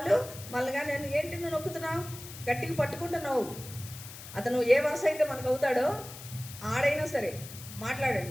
మళ్ళీ నేను ఏంటి నువ్వు నొక్కుతున్నావు, గట్టిగా పట్టుకుంటున్నావు, అతను ఏ వరుస అయితే మనకు అవుతాడో ఆడైనా సరే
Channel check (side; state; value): left; noise; hiss, 14 dB below the sound